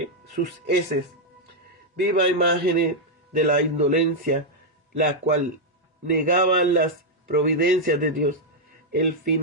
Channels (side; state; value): both; normal; correlation -0.02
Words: sus heces. Viva imagen de la indolencia, la cual negaba las providencias de Dios. El